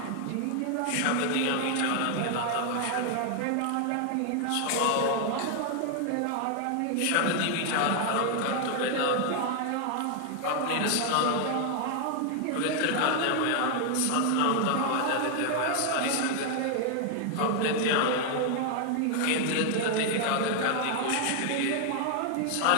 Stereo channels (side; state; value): both; different; correlation 0.00